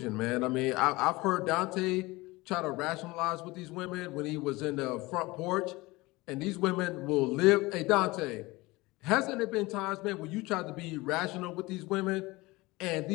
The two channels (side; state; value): right; quieter; 21.6 dB